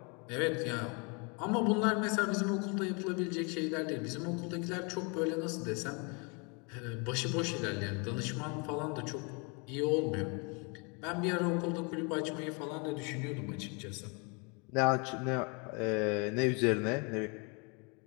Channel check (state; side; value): quieter; right; 32.9 dB